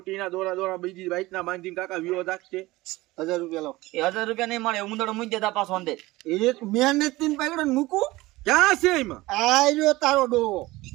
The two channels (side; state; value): left; quieter; 19.5 dB